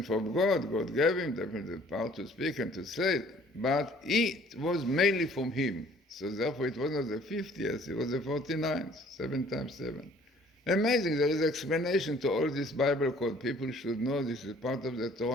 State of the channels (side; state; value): both; normal; correlation 0.56